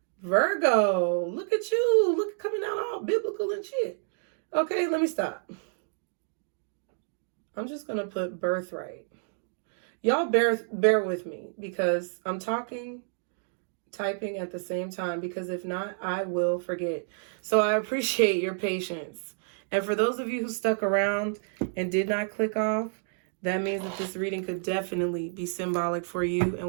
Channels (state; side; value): silent; left; digital silence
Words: Virgo, look at you. Look, coming out all biblical and shit. Okay, let me stop. I'm just going to put birthright. Y'all bear with me because I'm typing at the same time, because if not, I will forget. So I appreciate your patience. And for those of you who stuck around and did not click off, that means that this reading could definitely be symbolic for you